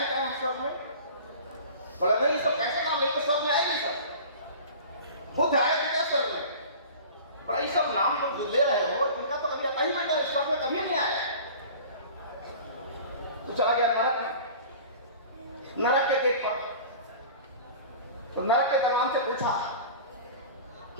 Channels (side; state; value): both; inverted; correlation -0.40